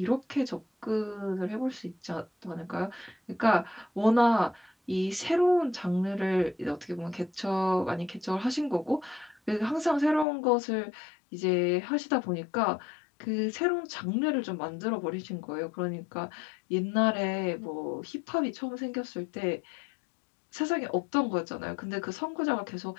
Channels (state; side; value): drops out; right; at 10.2 s